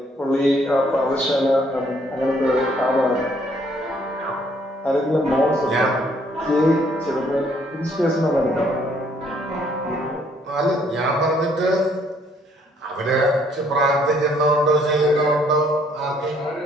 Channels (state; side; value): normal; both; correlation 0.65